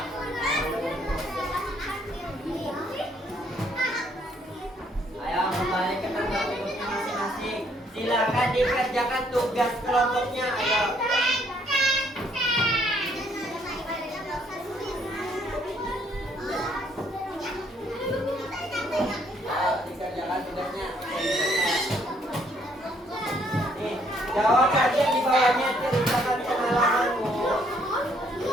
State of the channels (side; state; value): both; normal; correlation 0.67